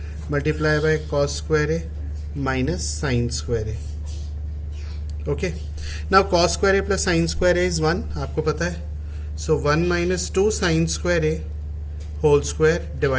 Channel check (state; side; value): identical; both; correlation 1.00